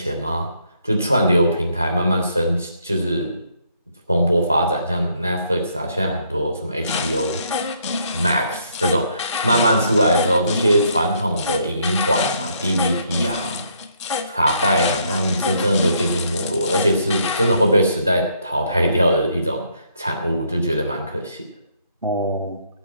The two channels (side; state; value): both; inverted; correlation -0.70